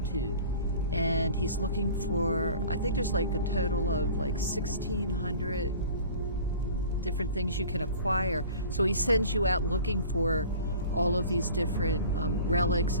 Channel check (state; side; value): inverted; both; correlation -0.44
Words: and he's looking for, I think there's like a total of like 1,600 different things you can acquire. So he sends you out looking for all of these different relics